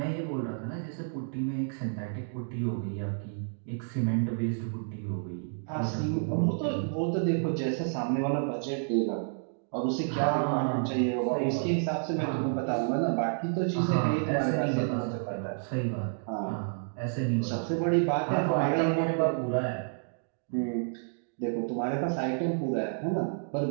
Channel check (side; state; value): left; silent; digital silence